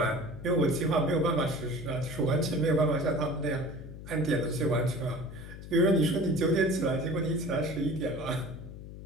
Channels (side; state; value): left; noise; hum, 13 dB below the sound